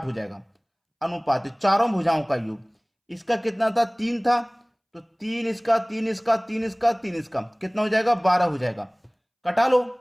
हो जाएगा। अनुपात चारों भुजाओं का योग, इसका कितना था, 3 था, तो 3 इसका, 3 इसका, 3 इसका, 3 इसका, कितना हो जाएगा, 12 हो जाएगा। कटा लो,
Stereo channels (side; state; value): both; identical; correlation 1.00